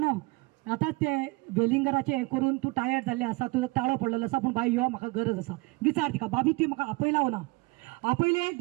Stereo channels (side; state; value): left; quieter; 25.7 dB